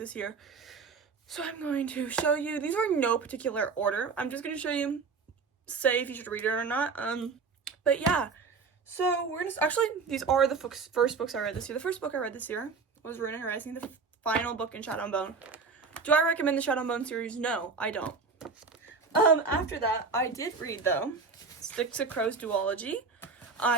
year. So I'm going to show you, these are in no particular order. I'm just going to show you, say if you should read it or not. But yeah, so we're going to, actually, these are the first books I read this year. The first book I read this year was Ruin Horizon, the final book in Shadow and Bone. Do I recommend the Shadow and Bone series? No, I don't. After that, I did read, though, Sticks of Crow's duology.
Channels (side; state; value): left; quieter; 4.9 dB